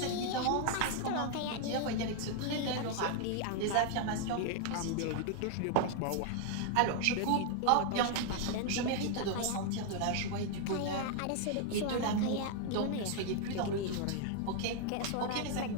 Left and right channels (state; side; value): different; both; correlation 0.00